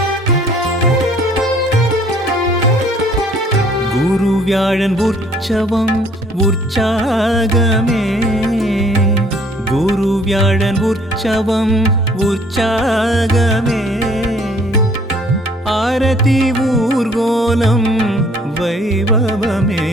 गुरुव्याळन उற்சவம் உற்சாகமே गुरुव्याळन உற்சவம் உற்சாகமே आरती ஊர்கோலம் வைபவமே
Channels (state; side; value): normal; both; correlation 0.58